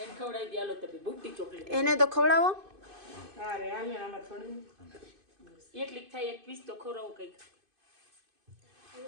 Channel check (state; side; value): late; left; 2.5 ms